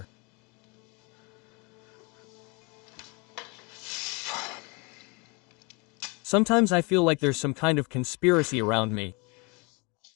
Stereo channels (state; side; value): quieter; right; 29.8 dB